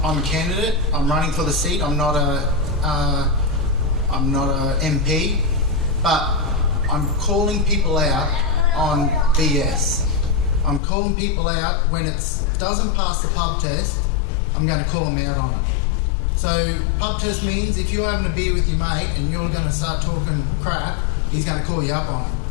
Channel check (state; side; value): drops out; right; at 10.8 s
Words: I'm a candidate. I'm running for the seat. I'm not a MP, but I'm calling people out on BS. I'm calling people out when it doesn't pass the pub test. I'm going to call them out on it. So pub test means if you're having a beer with your mate and you're going to start talking crap, he's going to call you up on it.